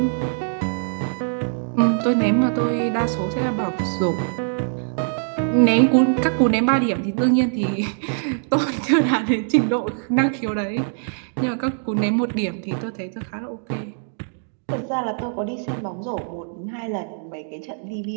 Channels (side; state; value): left; silent; digital silence